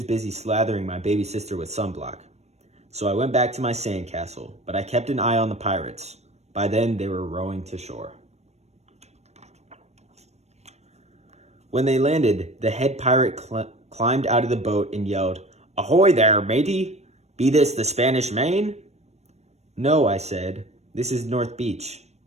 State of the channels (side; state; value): left; late; 0.32 ms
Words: busy slathering my baby sister with sunblock. So I went back to my sandcastle, but I kept an eye on the pirates. By then, they were rowing to shore. When they landed, the head pirate climbed out of the boat and yelled, "Ahoy there, matey! Be this the Spanish Main?" "No," I said. "This is North Beach."